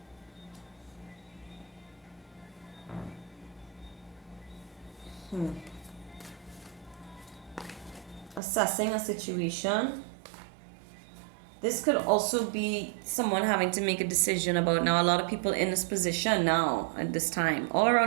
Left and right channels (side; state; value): left; drops out; at 8.4 s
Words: Assessing a situation. This could also be someone having to make a decision about, now a lot of people in this position now at this time all